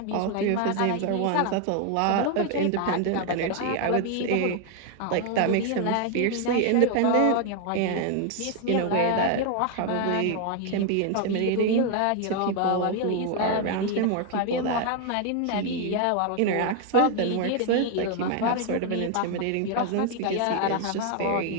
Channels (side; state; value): both; different; correlation 0.01